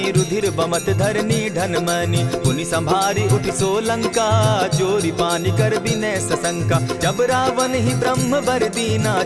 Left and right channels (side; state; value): both; identical; correlation 1.00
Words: रुधिर बमत धरनी ढनमनी। पुनि संभारी उठि सो लंका, चोरी पानी कर विनय सशंका। जब रावण ही ब्रह्म बर दीना,